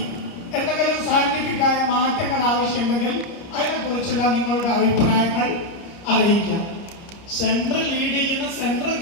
എന്തെങ്കിലും സയന്റിഫിക്കായ മാറ്റങ്ങൾ ആവശ്യമുണ്ടെങ്കിൽ അതിനെക്കുറിച്ചുള്ള നിങ്ങളുടെ അഭിപ്രായങ്ങൾ അറിയിക്കാം. സെൻട്രൽ ലീഡ് ചെയ്യുന്ന സെൻട്രൽ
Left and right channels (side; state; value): right; late; 30 ms